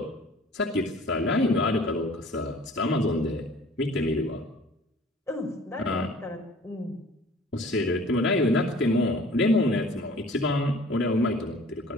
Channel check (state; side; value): normal; both; correlation 0.49